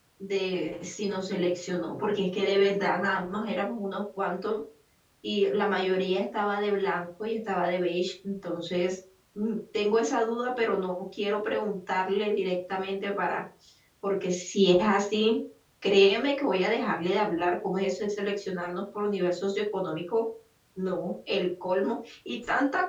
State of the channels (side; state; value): both; identical; correlation 1.00